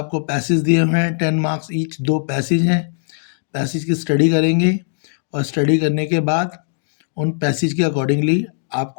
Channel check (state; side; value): silent; right; digital silence